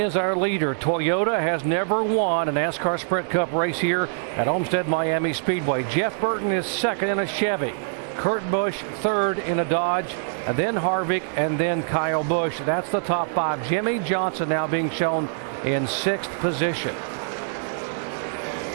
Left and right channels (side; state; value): left; silent; 62 dB below the other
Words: our leader. Toyota has never won a NASCAR Sprint Cup race here at Homestead-Miami Speedway. Jeff Burton is second in a Chevy. Kurt Busch third in a Dodge, and then Harvick, and then Kyle Busch. That's the top five. Jimmie Johnson now being shown in sixth position.